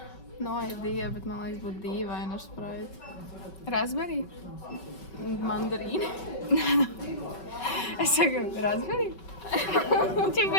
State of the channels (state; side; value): late; right; 5.3 ms